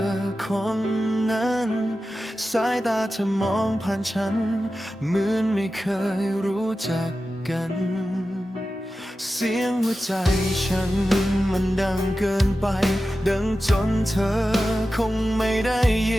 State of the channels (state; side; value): normal; both; correlation 0.93